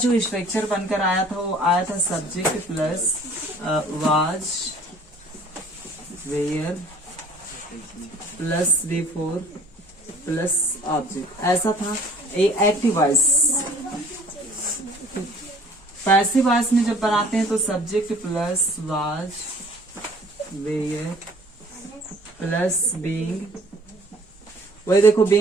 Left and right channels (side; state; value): both; normal; correlation 0.53